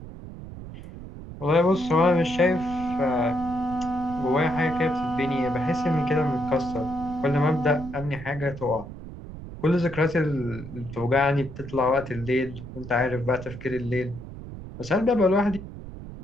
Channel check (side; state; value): right; noise; rumble, 12 dB below the sound